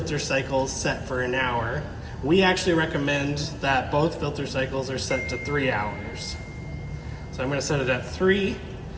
cycle is set for an hour. We actually recommend that both filter cycles are set to 3 hours. So I'm going to set it at 3.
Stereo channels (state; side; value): identical; both; correlation 1.00